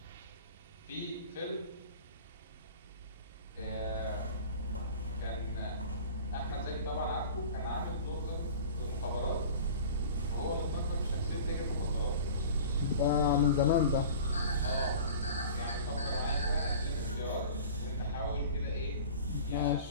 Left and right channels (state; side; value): inverted; both; correlation -0.40